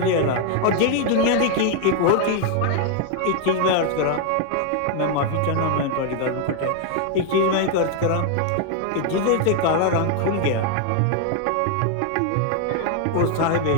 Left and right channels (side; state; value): both; different; correlation 0.00